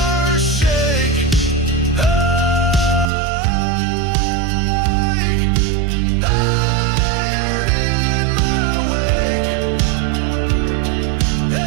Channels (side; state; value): left; drops out; at 3.1 s